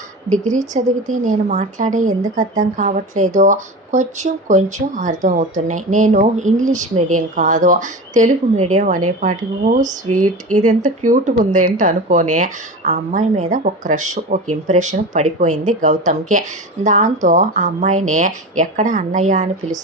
డిగ్రీ చదివితే నేను మాట్లాడే ఎందుకు అర్థం కావట్లేదో? కొంచెం కొంచెం అర్థం అవుతున్నాయి. నేను ఇంగ్లీష్ మీడియం కాదు, తెలుగు మీడియం అనేపాటికి ఓ స్వీట్, ఇది ఎంత క్యూట్గా ఉందేంటి అనుకొని ఆ అమ్మాయి మీద ఒక క్రష్, ఒక ఇంప్రెషన్ పడిపోయింది గౌతమ్కి. దాంతో ఆ అమ్మాయిని ఎక్కడ అన్నయ్య అని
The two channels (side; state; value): both; normal; correlation 0.28